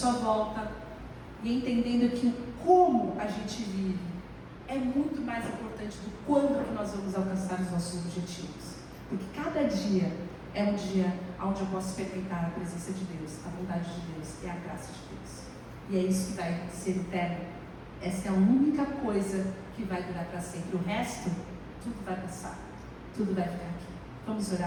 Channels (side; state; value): both; identical; correlation 1.00